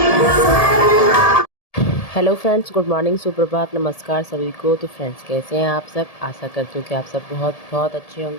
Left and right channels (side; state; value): right; late; 1.7 ms